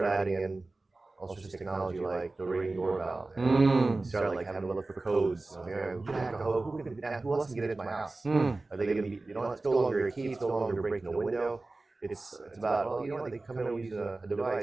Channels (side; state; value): left; quieter; 3.2 dB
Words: adding in all sorts of technology like the ring doorbell. And you start like having to look for codes. Who else can get into my house? Are they going to be? It's no longer a key. It's no longer breaking a window. It's about, well, they come in and use a